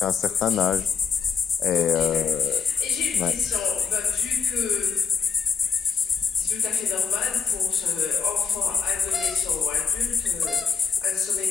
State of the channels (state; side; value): quieter; right; 6.1 dB